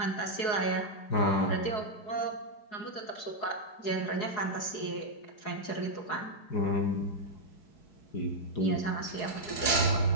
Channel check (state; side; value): late; right; 4.7 ms